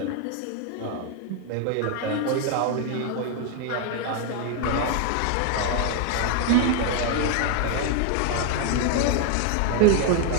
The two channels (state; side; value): different; both; correlation 0.01